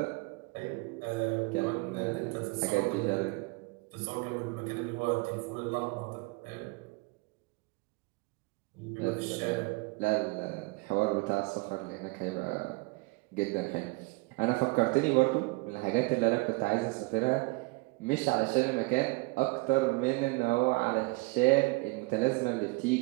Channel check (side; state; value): left; quieter; 25.7 dB